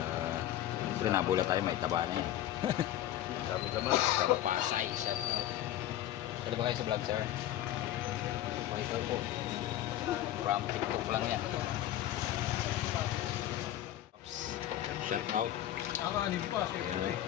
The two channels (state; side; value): quieter; right; 12.9 dB